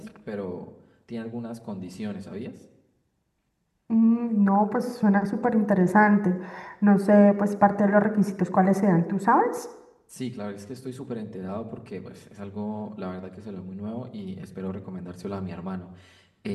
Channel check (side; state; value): both; identical; correlation 1.00